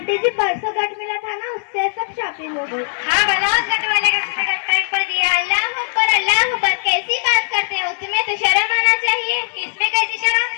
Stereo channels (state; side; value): silent; right; 59 dB below the other